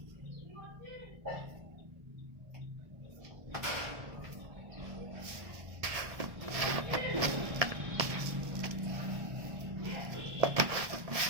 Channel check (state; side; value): late; left; 1.3 ms